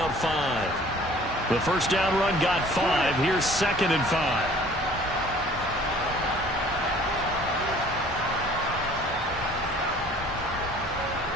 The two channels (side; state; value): both; normal; correlation 0.52